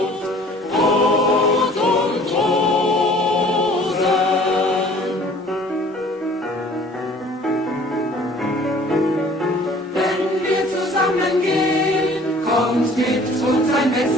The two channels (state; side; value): normal; both; correlation 0.51